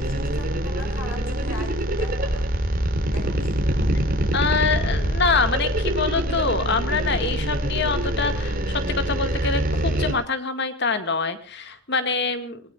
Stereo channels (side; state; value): both; normal; correlation 0.37